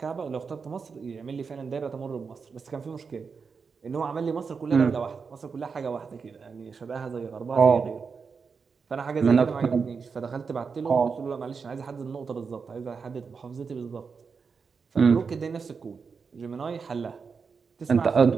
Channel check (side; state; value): left; quieter; 5.4 dB